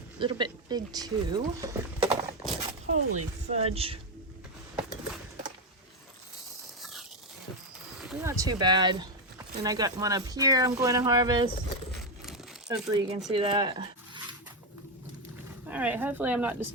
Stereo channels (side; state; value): both; normal; correlation 0.07